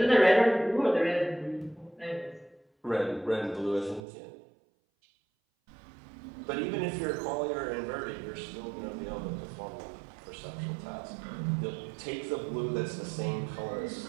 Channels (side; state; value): left; drops out; at 4.0 s